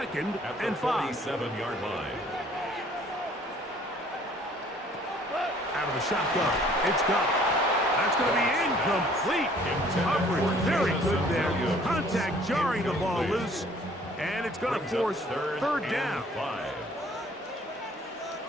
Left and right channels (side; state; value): both; normal; correlation 0.57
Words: and 5. 47-yard line. Out of the shotgun. It's Goff. That's going to be incomplete. Coverage very good there. Contact jarring the ball loose. And it's going to force third down.